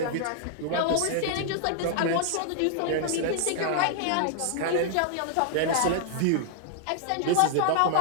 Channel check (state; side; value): different; both; correlation 0.00